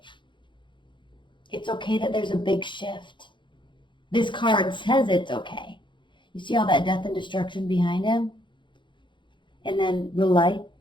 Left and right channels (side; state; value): right; late; 0.23 ms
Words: It's okay that there's a big shift. This card says it's okay. You see all that death and destruction behind him? And then the light